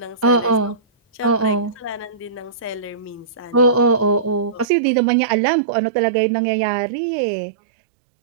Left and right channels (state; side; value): drops out; left; at 4.7 s